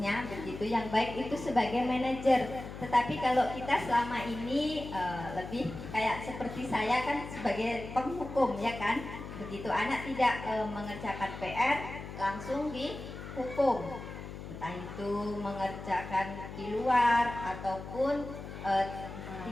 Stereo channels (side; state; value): left; noise; hum, 10 dB below the sound